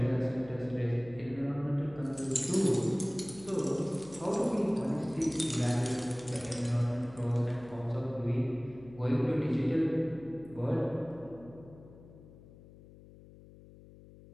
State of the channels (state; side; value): noise; left; hum, 20 dB below the sound